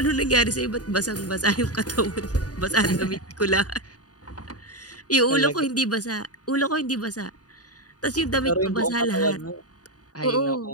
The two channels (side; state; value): right; late; 0.68 ms